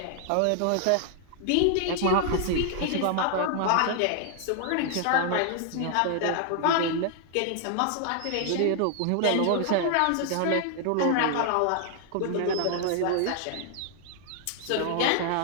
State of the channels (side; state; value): both; different; correlation 0.00